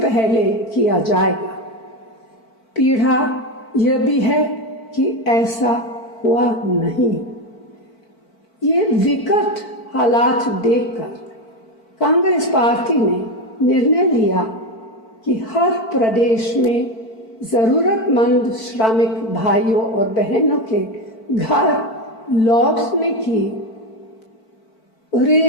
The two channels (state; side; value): late; right; 4.5 ms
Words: पहले किया जाएगा। पीड़ा यह भी है कि ऐसा हुआ नहीं। ये विकट हालात देखकर कांग्रेस पार्टी ने निर्णय लिया कि हर प्रदेश में जरूरतमंद श्रमिक भाइयों और बहनों के घर लौटने की